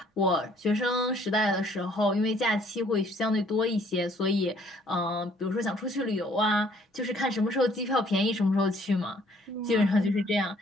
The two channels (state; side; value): normal; both; correlation 0.61